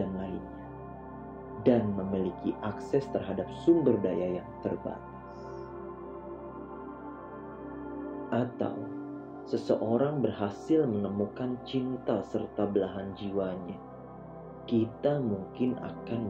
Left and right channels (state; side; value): identical; both; correlation 1.00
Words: lainnya, dan memiliki akses terhadap sumber daya yang terbatas. Atau seseorang berhasil menemukan cinta serta belahan jiwanya, kita mungkin